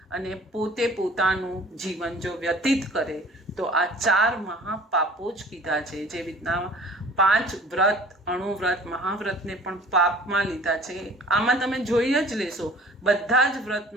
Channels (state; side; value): normal; both; correlation 0.47